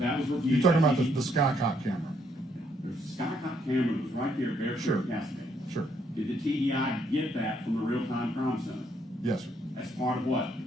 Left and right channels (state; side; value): normal; both; correlation 0.71